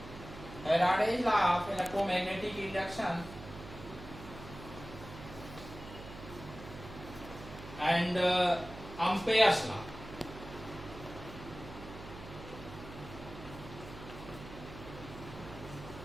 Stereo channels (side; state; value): right; noise; hum, 13 dB below the sound